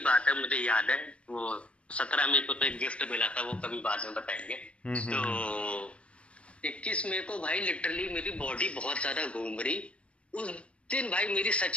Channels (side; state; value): right; late; 0.061 ms